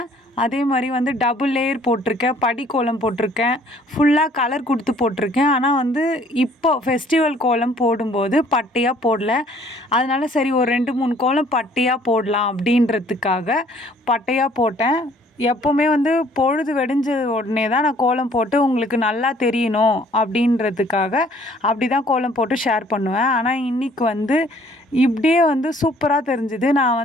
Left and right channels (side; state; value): both; normal; correlation 0.58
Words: அதே மாதிரி டபுள் லேயர் போட்டிருக்கேன், படி கோலம் போட்டிருக்கேன், ஃபுல்லாக கலர் கொடுத்து போட்டிருக்கேன். ஆனால் இப்போ ஃபெஸ்டிவல் கோலம் போடும்போது பட்டையாக போடல. அதனால சரி ஒரு 2-3 கோலம் பட்டையாக போடலாம் அப்படின்றதுக்காக பட்டையாக போட்டேன். எப்போவுமே பொழுது வெடிஞ்ச உடனே தான் நான் கோலம் போட்டு உங்களுக்கு நல்லா தெரியணும் அப்படின்றதுக்காக அப்படி தான் கோலம் போட்டு ஷேர் பண்ணுவேன். ஆனால் இன்றைக்கி இப்படியே சூப்பராக தெரிஞ்சுது.